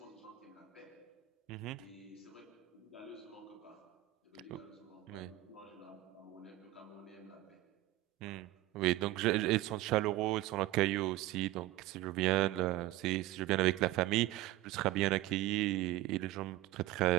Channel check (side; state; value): left; quieter; 16.5 dB